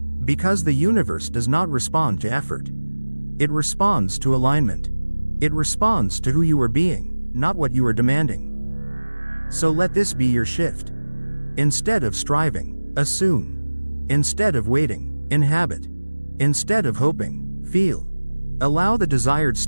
Because the universe does not respond to effort. It responds to alignment. It responds to who you are being, not what you are demanding. So let this be your shift. Instead of striving, assume. Instead of waiting, inhabit. Instead of hoping, feel. Allow the desired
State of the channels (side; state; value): both; inverted; correlation -1.00